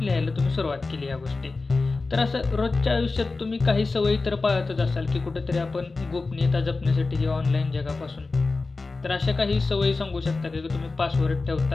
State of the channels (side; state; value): right; quieter; 3.7 dB